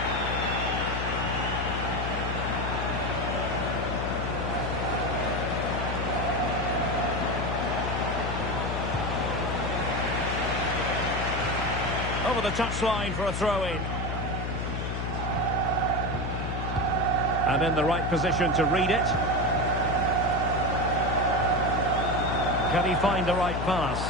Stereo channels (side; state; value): left; noise; hum, 3 dB below the sound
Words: Over the touchline for a throw-in. And in the right position to read it. Can he find the right pass?